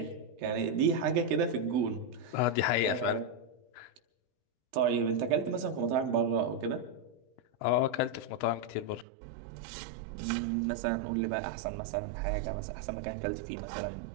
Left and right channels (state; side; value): drops out; left; at 9.1 s